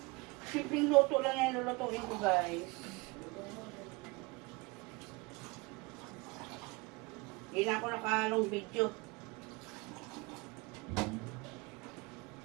Simpleng luto lang yan lulutuin ko, guys. Hindi na ako nakahalong video.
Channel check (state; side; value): quieter; left; 25.9 dB